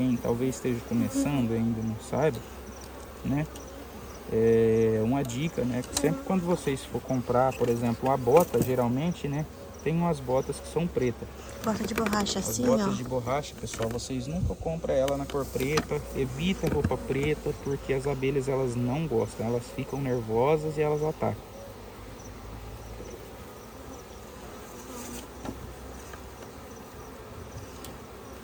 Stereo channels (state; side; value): identical; both; correlation 1.00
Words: talvez esteja começando e ainda não saiba, né? É uma dica, né? Que sempre quando vocês for comprar, por exemplo, uma bota, geralmente, né? Tem umas botas que são pretas. Bota de borracha As assim, botas ó. de borracha, pessoal, vocês nunca compram ela na cor preta. Evita roupa preta, porque as abelhas elas não gostam. Elas ficam nervosas e elas atacam.